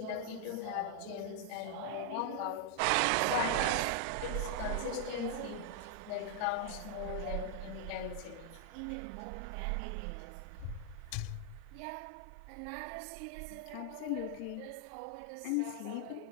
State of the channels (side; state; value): both; different; correlation 0.00